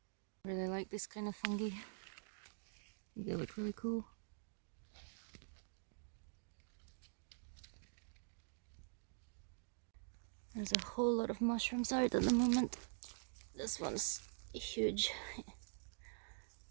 I really like this kind of fungi. They look really cool. There's a whole lot of mushrooms out at the moment. This one's huge.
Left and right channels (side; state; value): left; silent; digital silence